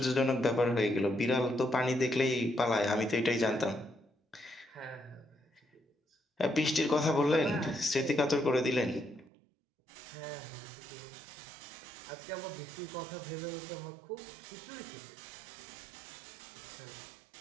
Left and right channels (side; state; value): left; drops out; at 9.3 s